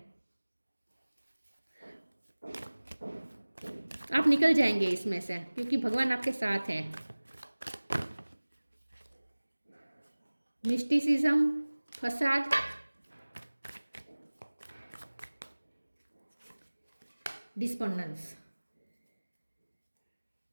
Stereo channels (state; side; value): inverted; both; correlation -1.00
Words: आप निकल जाएंगे इसमें से, क्योंकि भगवान आपके साथ है। मिस्टिसिज्म, फसाद, डिस्पोंडेंस।